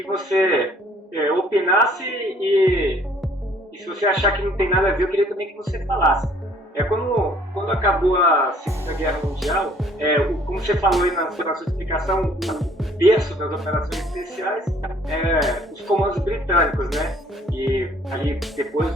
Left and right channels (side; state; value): both; normal; correlation 0.59